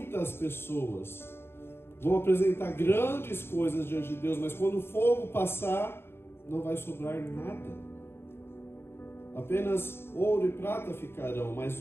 pessoas vão apresentar grandes coisas diante de Deus, mas quando o fogo passar, não vai sobrar nada. Apenas ouro e prata ficarão, mas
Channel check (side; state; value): right; late; 0.11 ms